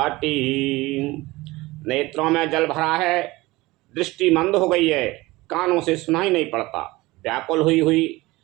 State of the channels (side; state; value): left; quieter; 20.5 dB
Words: नेत्रों में जल भरा है, दृष्टि मंद हो गई है, कानों से सुनाई नहीं पड़ता, व्याकुल